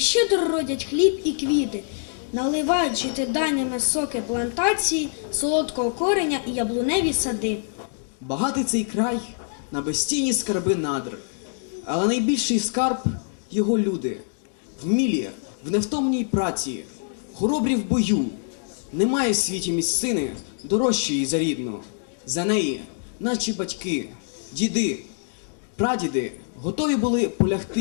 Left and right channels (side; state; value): right; silent; digital silence